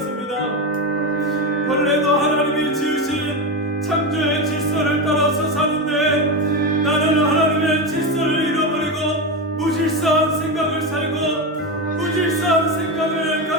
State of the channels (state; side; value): normal; both; correlation 0.15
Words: 벌레도 하나님이 지으신 창조의 질서를 따라서 사는데 나는 하나님의 질서를 잃어버리고 무질서한 생각을 살고 무질서한 생각을